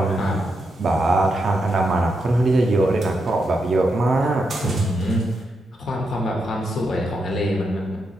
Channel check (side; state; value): both; normal; correlation 0.83